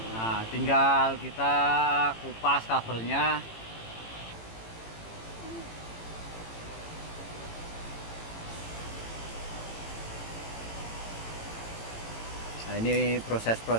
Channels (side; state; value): right; late; 18 ms